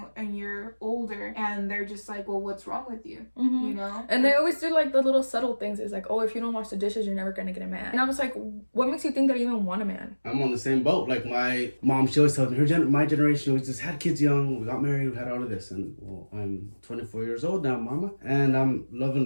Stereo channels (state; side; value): inverted; both; correlation -1.00